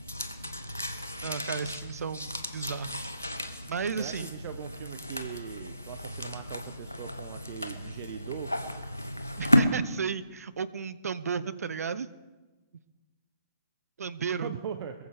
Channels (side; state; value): both; inverted; correlation -0.75